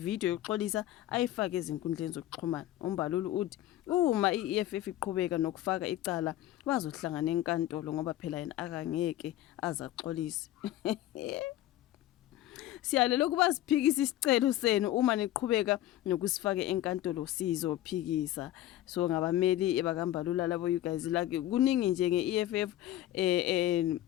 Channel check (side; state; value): right; quieter; 13.9 dB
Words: yokuxolisa ayifake ezinkundleni zokuxhumana. uMbalula uthi uma iEFF iqhubeka nokufaka icala bazohlangana enkantolo ngoba phela yena akangeke azaxolise. Siyalela ukuba siphikise isicelo senu uma niqhubeka nokusifaka enkantolo sizophikisa. So ngabameli ebakaMbalula labo you guys like kuningi nje ngeEFF